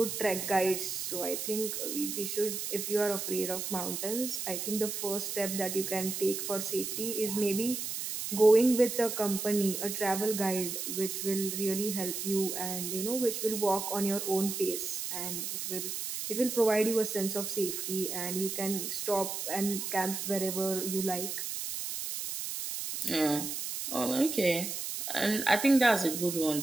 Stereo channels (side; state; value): right; noise; hiss, 4 dB below the sound